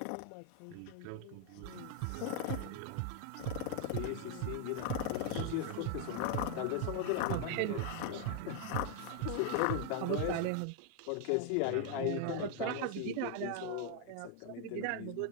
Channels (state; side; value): different; both; correlation 0.00